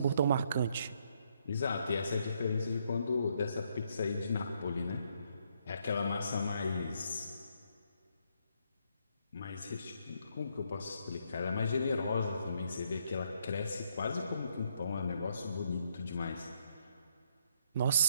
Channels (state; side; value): inverted; both; correlation -0.73